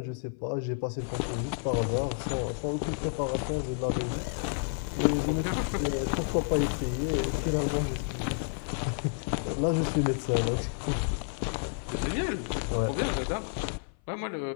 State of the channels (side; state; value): right; silent; 55 dB below the other